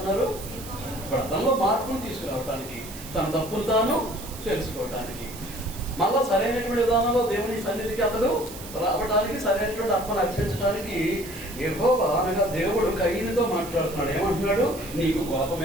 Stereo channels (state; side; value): noise; right; hiss, 14 dB below the sound